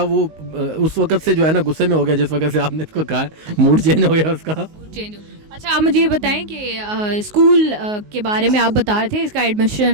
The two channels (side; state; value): left; late; 19 ms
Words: वो उस वक्त से जो है ना गुस्से में हो गया, जिस वक्त से आपने इसको कहा, मूड चेंज हो गया उसका। चेंज हो। अच्छा आप मुझे ये बताएं कि स्कूल के बारे में आप बता रहे थे, इसका